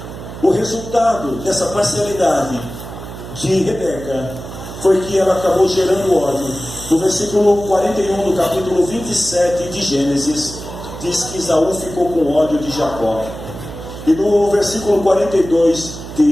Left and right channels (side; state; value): right; noise; hum, 12 dB below the sound